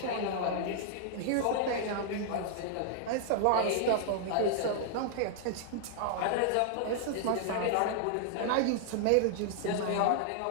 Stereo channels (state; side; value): different; both; correlation -0.01